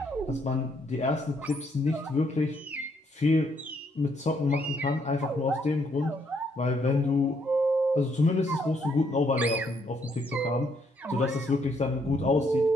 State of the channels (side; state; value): both; normal; correlation 0.72